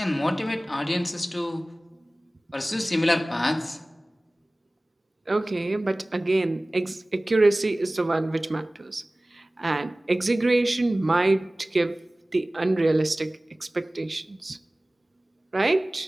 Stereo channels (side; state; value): both; normal; correlation 0.98